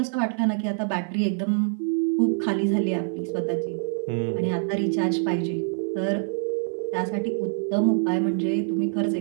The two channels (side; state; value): left; silent; 55 dB below the other